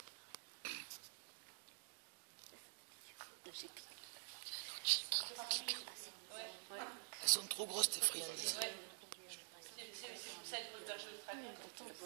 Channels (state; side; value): silent; left; digital silence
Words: Elles sont trop grosses tes friandises. C'est pour ça qu'il faut le berger ultra bien.